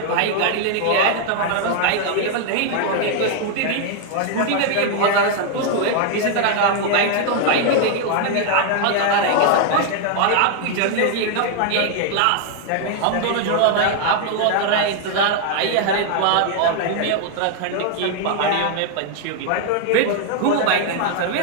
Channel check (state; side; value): different; both; correlation 0.00